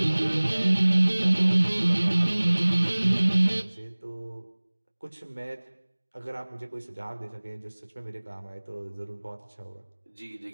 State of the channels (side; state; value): both; inverted; correlation -1.00